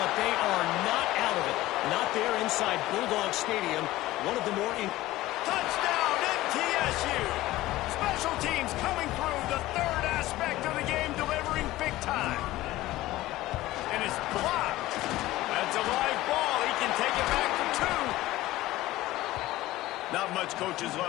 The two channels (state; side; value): quieter; right; 16.9 dB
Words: they are not out of it. Not there inside Bulldog Stadium. One of the more... Touchdown, MTSU! Special teams coming through, the third aspect of the game, delivering big time. And it's blocked. That's a live ball. He can take it back for 2. Not much coaches